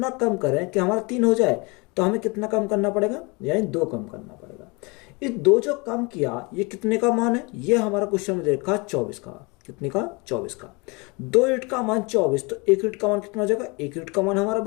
कम करें कि हमारा 3 हो जाए, तो हमें कितना कम करना पड़ेगा, यानी 2 कम करना पड़ेगा। इस 2 जो कम किया, ये कितने का मान है, ये हमारा क्वेश्चन में देखा 24 का। कितने का, 24 का। 2 यूनिट का मान 24, तो 1 यूनिट का मान कितना हो जाएगा, 1 यूनिट का मान हमारा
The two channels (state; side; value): quieter; right; 28.3 dB